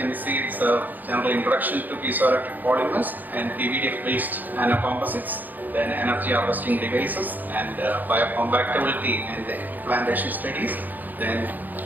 see it's a general introduction to piezoelectric polymers and PVDF based nanocomposites, then energy harvesting devices and biocompatibility and the implantation studies, then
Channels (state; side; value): late; left; 0.085 ms